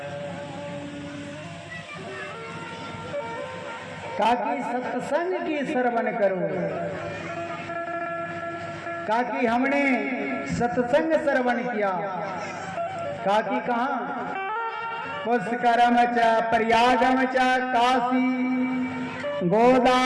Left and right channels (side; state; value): both; identical; correlation 1.00